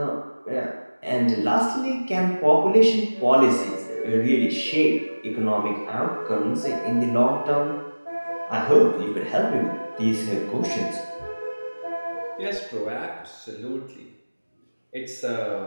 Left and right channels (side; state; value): both; inverted; correlation -1.00